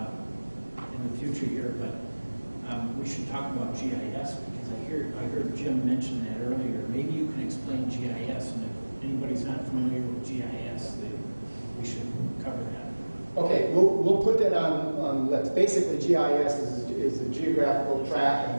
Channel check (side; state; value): both; inverted; correlation -1.00